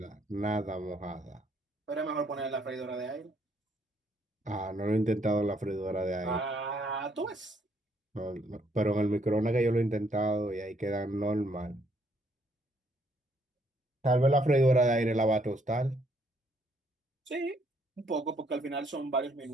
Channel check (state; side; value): normal; both; correlation 0.69